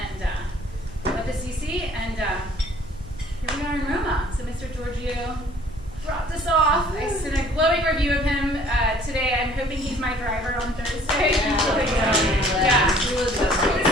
went to CC, and here we are in Roma. So Mr. Giorgio dropped us off. I sent a glowing review of him today. I'm hoping he's my driver on Thursday. Yeah. It was so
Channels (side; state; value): both; normal; correlation 0.55